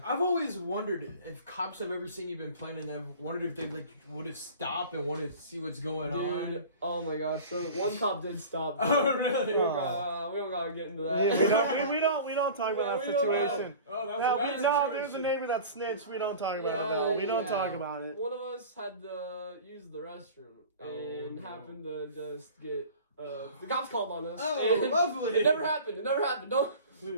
I've always wondered if cops have ever seen you been playing, and I've wondered if they would have stopped and wanted to see what's going on. Oh my gosh! So one cop did stop. Oh really? We don't gotta get into that. Yeah, we don't talk about that situation. There's a neighbor that snitched. We don't talk about it. We don't talk about it. One of us had to use the restroom and happened to just get the cops called on us. Oh, lovely! It never happened. Don't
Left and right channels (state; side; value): inverted; both; correlation -0.39